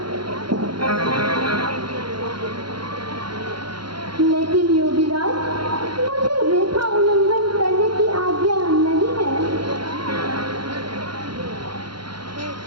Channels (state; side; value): late; left; 0.73 ms